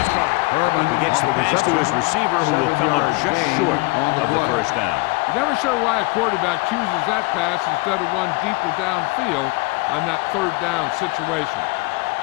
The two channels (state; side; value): quieter; right; 25.6 dB